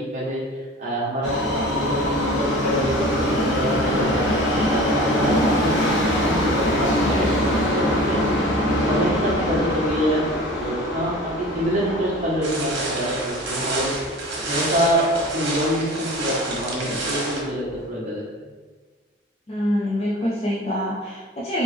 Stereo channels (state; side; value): normal; both; correlation 0.39